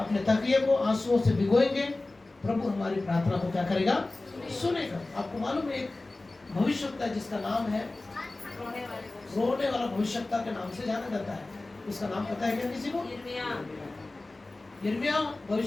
तकिए को आंसुओं से भिगोएंगे, प्रभु हमारी प्रार्थना को क्या करेगा? सुनेगा। आपको मालूम है एक भविष्यवक्ता जिसका नाम है रोने वाला भविष्यवक्ता के नाम से जाना जाता है। उसका नाम पता है क्या किसी को? यिर्मयाह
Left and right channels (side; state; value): right; quieter; 3.0 dB